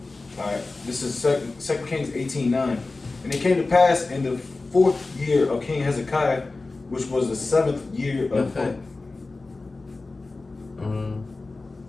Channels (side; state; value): right; quieter; 3.5 dB